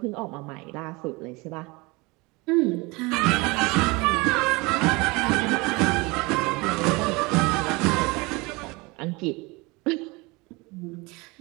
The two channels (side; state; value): left; quieter; 25.2 dB